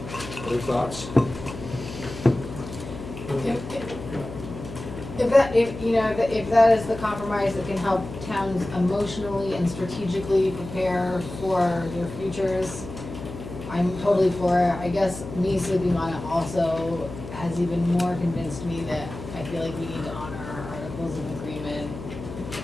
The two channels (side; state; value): left; noise; hum, 11 dB below the sound